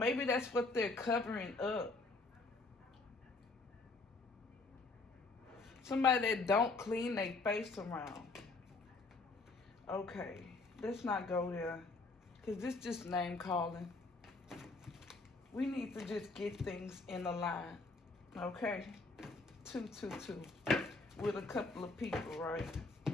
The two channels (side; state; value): right; quieter; 3.5 dB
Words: that's what they're covering up. Somebody that don't clean their face around. Okay, let's not go there. Because this just name calling. We need to just get things in a line. Okay? 222. With a couple of people, right?